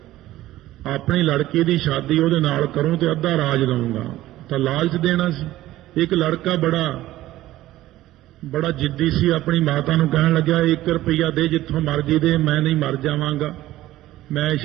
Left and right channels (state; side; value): quieter; left; 15.3 dB